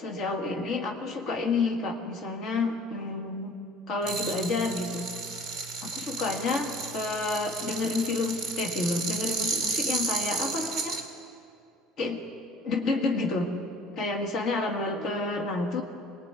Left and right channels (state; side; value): normal; both; correlation 0.49